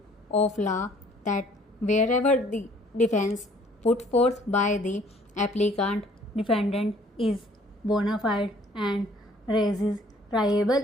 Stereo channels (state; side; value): normal; both; correlation 0.58